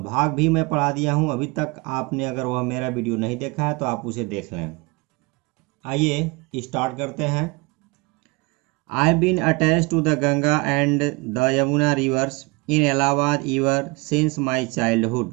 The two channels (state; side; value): quieter; left; 26.6 dB